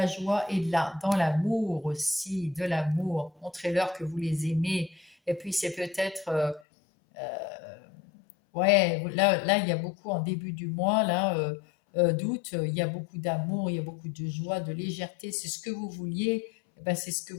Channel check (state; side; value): drops out; right; at 6.6 s